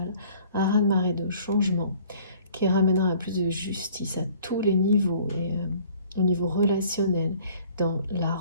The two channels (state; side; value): inverted; both; correlation -0.54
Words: un raz-de-marée de changement qui ramènera à plus de justice à tous les niveaux, et au niveau relationnel, dans la